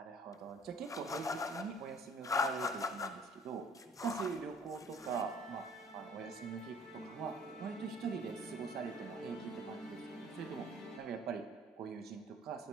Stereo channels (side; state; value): both; normal; correlation 0.53